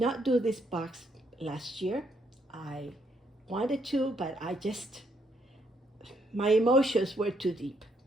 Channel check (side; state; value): both; normal; correlation 0.73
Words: do this box last year. I wanted to, but my emotions were too deep.